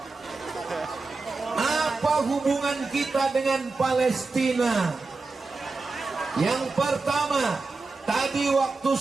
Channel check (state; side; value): quieter; left; 3.8 dB